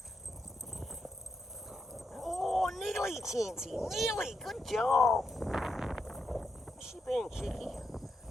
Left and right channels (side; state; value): both; normal; correlation 0.83